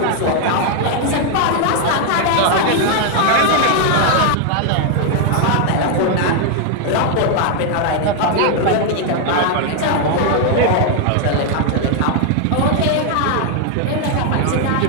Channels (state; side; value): different; both; correlation 0.00